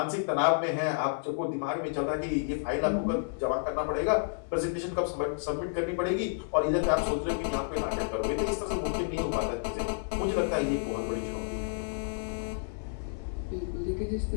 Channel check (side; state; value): right; silent; 57 dB below the other